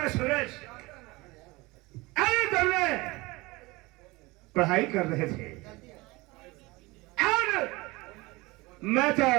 सूरज, अरे तुमने पढ़ाई कर रहे थे और मैं तो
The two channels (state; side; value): quieter; left; 22.6 dB